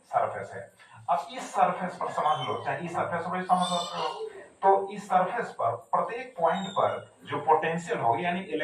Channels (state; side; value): identical; both; correlation 1.00